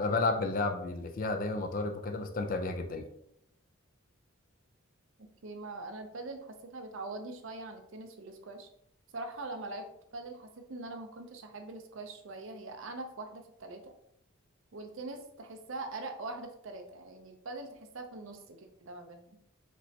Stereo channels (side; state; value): both; normal; correlation 0.01